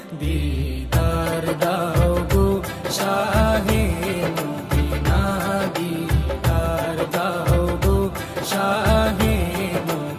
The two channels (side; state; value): both; identical; correlation 1.00